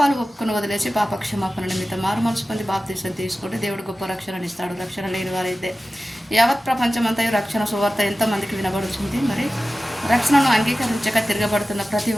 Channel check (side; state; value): both; normal; correlation 0.95